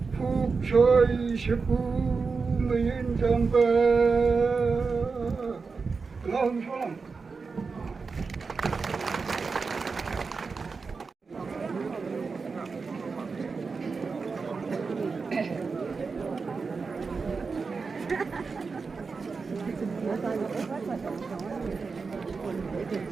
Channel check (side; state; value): left; quieter; 4.7 dB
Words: phục sôi sĩ phú mình trong bờ lòng phong